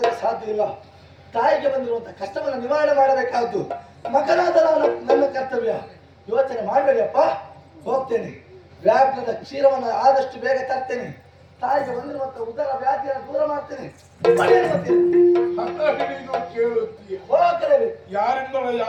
ಸಾಧ್ಯ ಇಲ್ಲ. ತಾಯಿಗೆ ಬಂದಿರುವಂತಹ ಕಷ್ಟವನ್ನು ನಿವಾರಣೆ ಮಾಡಬೇಕಾದ್ದು ಮಗನಾದ ನನ್ನ ಕರ್ತವ್ಯ. ಯೋಚನೆ ಮಾಡಬೇಡಿಯಪ್ಪ. ಹೋಗ್ತೇನೆ. ವ್ಯಾಘ್ರದ ಕ್ಷೀರವನ್ನು ಆದಷ್ಟು ಬೇಗ ತರ್ತೇನೆ. ತಾಯಿಗೆ ಬಂದಿರುವಂತಹ ಉದರ ವ್ಯಾಧಿಯನ್ನು ದೂರ ಮಾಡ್ತೇನೆ. ಯಾರಿಂದಲೂ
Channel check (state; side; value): identical; both; correlation 1.00